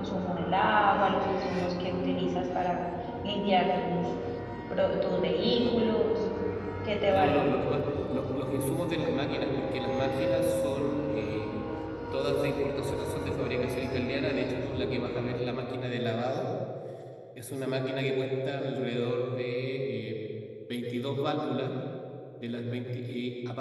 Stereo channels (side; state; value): both; identical; correlation 1.00